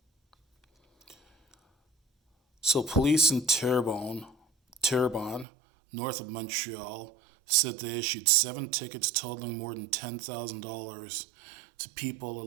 So police in Terrebonne, north of Montreal, said they issued 7 tickets totaling more than $10,000 to people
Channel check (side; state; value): left; drops out; at 5.5 s